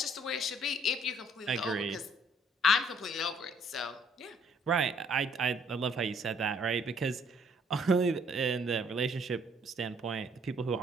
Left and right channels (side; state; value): both; normal; correlation 0.63